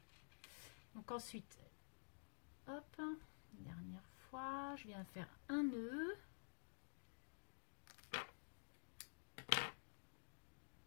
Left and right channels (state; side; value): silent; right; digital silence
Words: Donc ensuite, hop, une dernière fois, je viens faire un nœud.